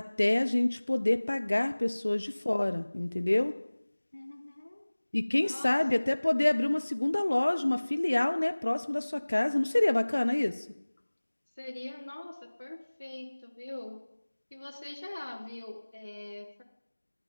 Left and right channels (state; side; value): inverted; both; correlation -1.00